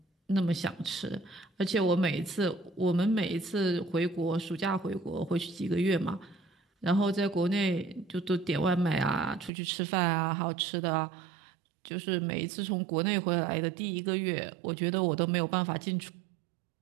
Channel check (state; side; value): drops out; left; at 9.5 s